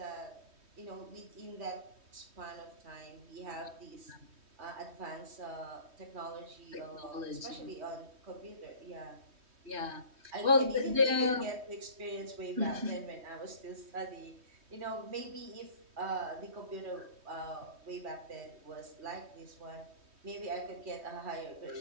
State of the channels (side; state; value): left; late; 3.2 ms